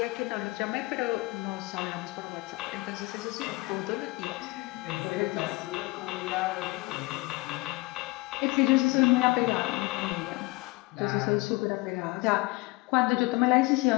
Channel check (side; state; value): right; quieter; 23.1 dB